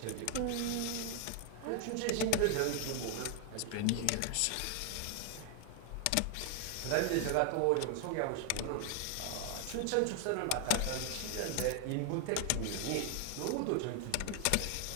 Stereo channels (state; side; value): different; both; correlation 0.00